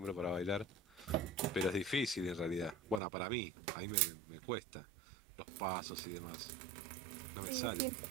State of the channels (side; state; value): left; drops out; at 3.0 s